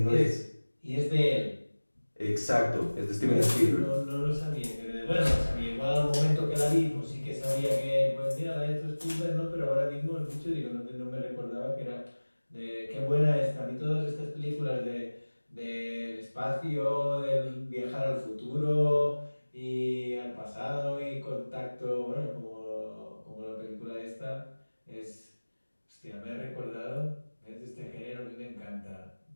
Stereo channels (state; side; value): inverted; both; correlation -1.00